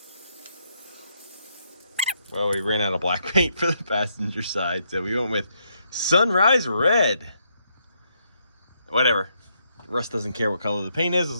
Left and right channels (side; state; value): both; inverted; correlation -0.76